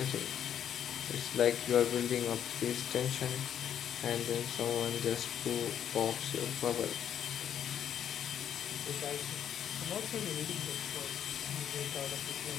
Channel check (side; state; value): right; quieter; 9.5 dB